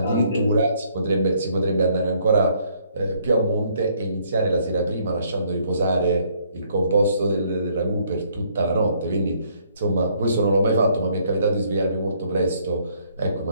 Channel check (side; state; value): both; inverted; correlation -0.66